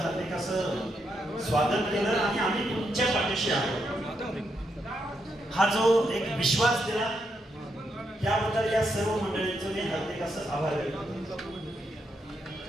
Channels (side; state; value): both; normal; correlation 0.81